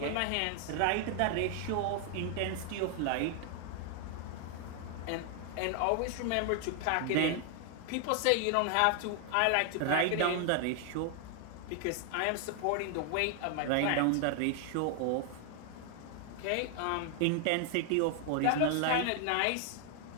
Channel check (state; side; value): different; both; correlation 0.00